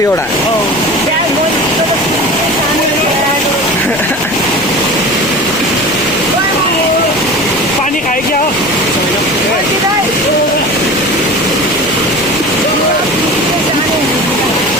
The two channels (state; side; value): noise; left; rumble, 21 dB below the sound